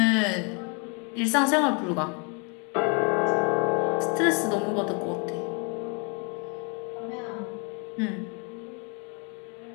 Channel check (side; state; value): right; quieter; 34.3 dB